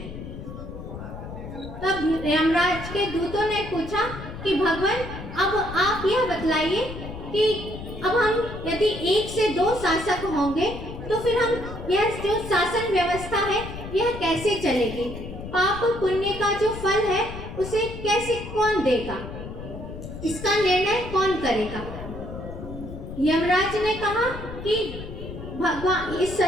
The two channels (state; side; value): noise; left; rumble, 10 dB below the sound